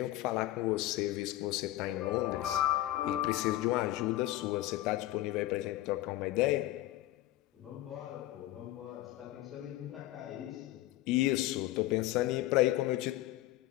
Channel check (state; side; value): quieter; right; 16.0 dB